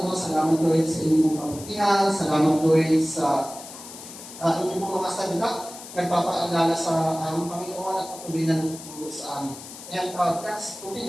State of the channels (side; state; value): left; noise; hiss, 14 dB below the sound